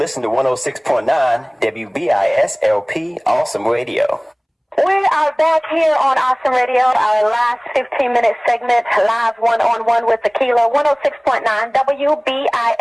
to 106.9 WBISLP Awesome Radio. We are back here on Awesome Radio, our last 15-minute segment, Live One-on-One with Akila, 106.9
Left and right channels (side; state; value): both; identical; correlation 1.00